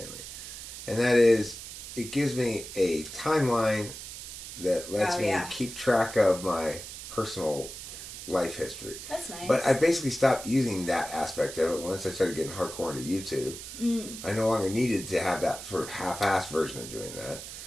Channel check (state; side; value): noise; right; hiss, 11 dB below the sound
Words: and that is it gives me a timeline that lets me keep track of my personal life history. That's nice. But I basically stopped using that aspect of it once I started getting hardcore into YouTube. I no longer needed to have that sort of half-assed version of doing that.